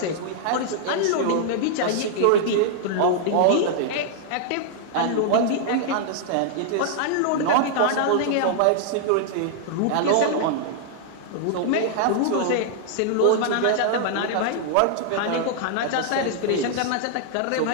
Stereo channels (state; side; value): different; both; correlation -0.01